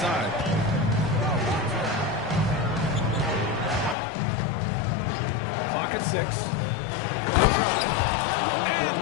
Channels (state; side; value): drops out; right; at 4.0 s